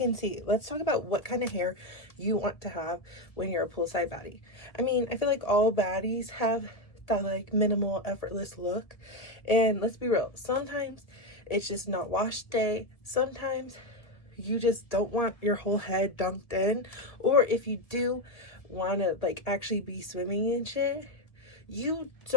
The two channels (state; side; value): late; right; 1.5 ms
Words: see, let's talk about what kind of hair you want to have when you're a poolside baddie. I mean, I feel like all baddies have that like minimal, effortless look. And let's be real, sometimes it's just not wash day. Sometimes you just don't want your whole head dunked in, or if you do want to like actually be swimming and shit, you